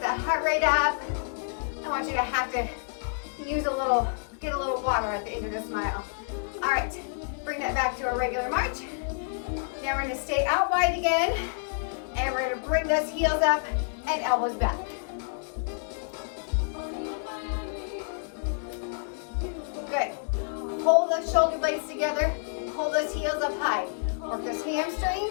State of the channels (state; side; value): silent; right; digital silence